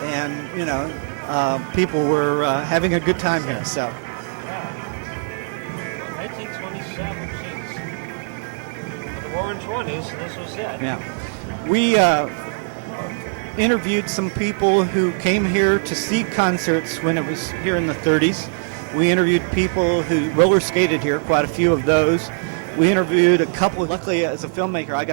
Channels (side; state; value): left; silent; 65 dB below the other